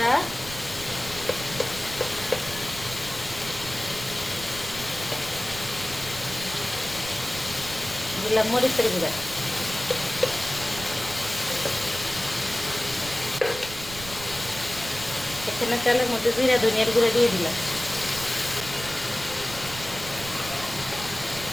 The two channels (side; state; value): right; noise; rumble, 13 dB below the sound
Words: দিলাম মরিচের গুঁড়া, এখানে তেলের মধ্যে জিরা ধনিয়ার গুঁড়া দিয়ে দিলাম।